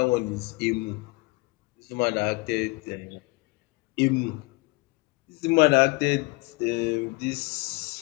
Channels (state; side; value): quieter; right; 26.2 dB